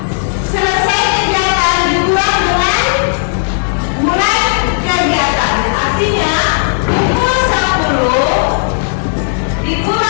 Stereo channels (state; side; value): silent; right; digital silence